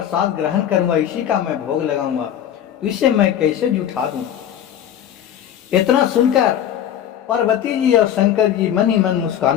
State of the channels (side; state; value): right; quieter; 10.3 dB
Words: ग्रहण करूँगा, इसी का मैं भोग लगाऊंगा, तो इसे मैं कैसे जुठा दूँ। इतना सुनकर पार्वती जी और शंकर जी मन ही मन